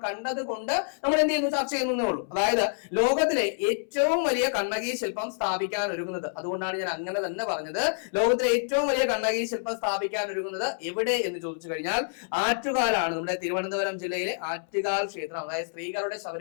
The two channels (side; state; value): right; silent; 60 dB below the other